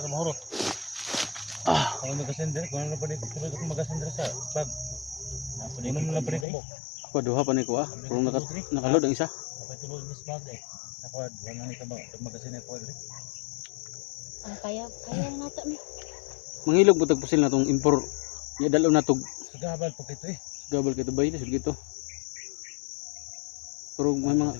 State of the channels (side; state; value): right; drops out; at 6.5 s